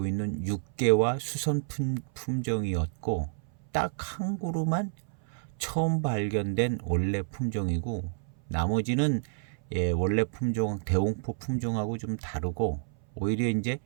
있는 육개와 수선 품종이었고 딱 한 그루만 처음 발견된 원래 품종이고 나머지는 원래 품종 대홍포 품종하고 좀 다르고 오히려 이제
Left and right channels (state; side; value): silent; left; 58 dB below the other